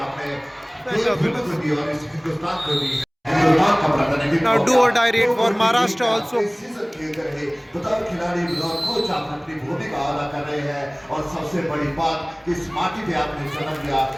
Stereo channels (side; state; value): both; identical; correlation 1.00